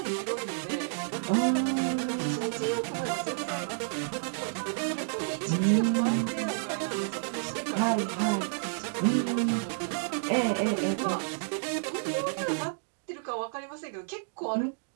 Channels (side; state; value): left; silent; digital silence